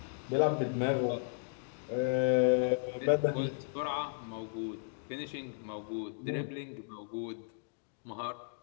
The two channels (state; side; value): silent; right; digital silence